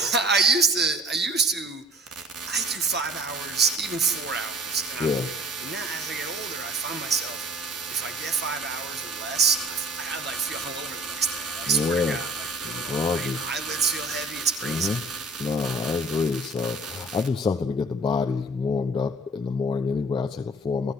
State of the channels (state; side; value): normal; both; correlation 0.49